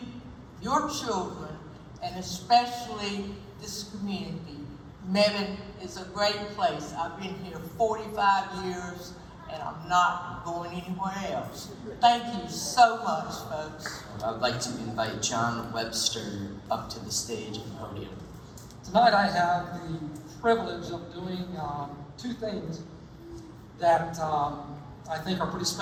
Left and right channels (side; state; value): both; identical; correlation 1.00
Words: your children, and especially this community. Mebane is a great place. I've been here 45 years, and I'm not going anywhere else. Thank you so much, folks. I'd like to invite John Webster up to the stage and podium. Tonight I have the privilege of doing two things that I think are pretty